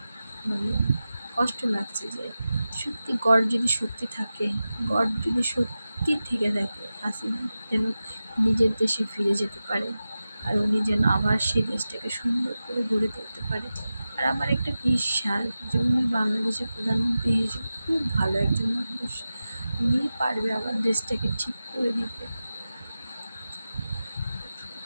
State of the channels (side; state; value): both; inverted; correlation -0.94